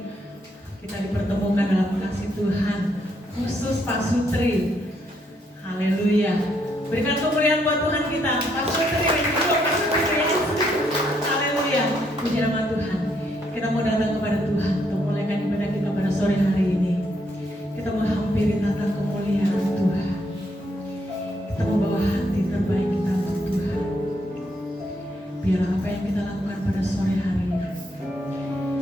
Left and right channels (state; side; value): normal; both; correlation 0.74